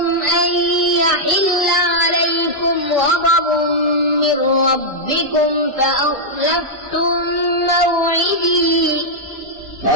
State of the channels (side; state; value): both; normal; correlation -0.05